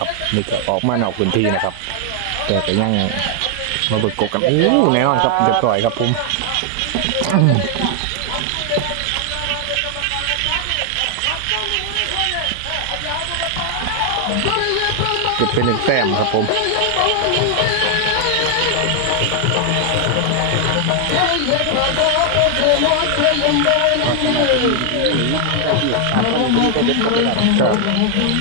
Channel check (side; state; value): both; different; correlation 0.00